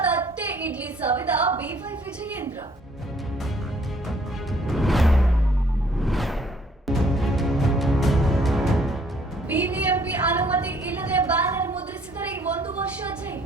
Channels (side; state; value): both; normal; correlation 0.62